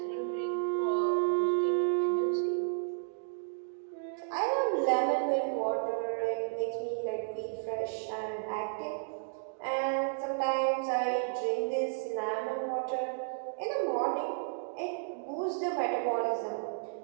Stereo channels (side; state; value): left; silent; digital silence